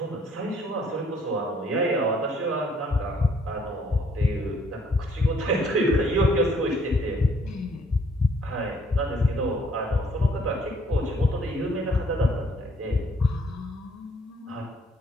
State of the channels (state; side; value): normal; both; correlation 0.64